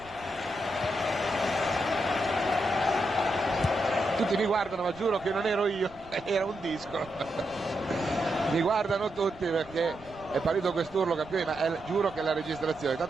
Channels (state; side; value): noise; right; rumble, 22 dB below the sound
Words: Tutti mi guardano, ma giuro che non ero io, era un disco. Mi guardano tutti perché è partito quest'urlo campione, ma giuro che è la registrazione.